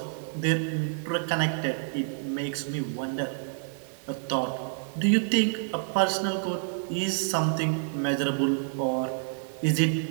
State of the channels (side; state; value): left; silent; digital silence